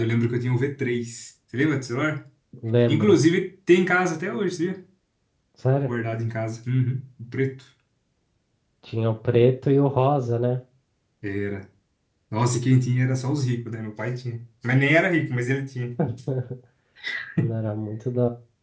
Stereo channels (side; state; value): both; identical; correlation 1.00